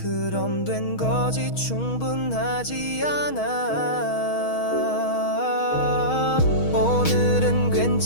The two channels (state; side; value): late; right; 6.3 ms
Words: 된 거지 충분하지 않아. 오늘은